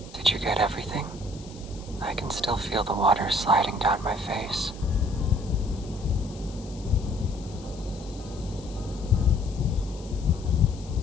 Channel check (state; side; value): noise; left; hiss, 21 dB below the sound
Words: Did you get everything? I can still feel the water sliding down my face.